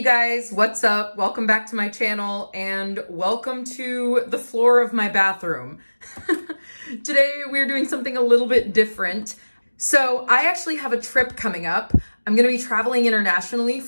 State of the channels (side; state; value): both; inverted; correlation -1.00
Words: guys, what's up? Welcome back to my channel and welcome to the floor of my bathroom. Today we're doing something a little bit different. So I actually have a trip coming up. I'm gonna be traveling internationally